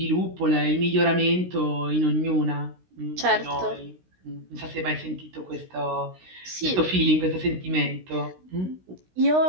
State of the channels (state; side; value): late; left; 16 ms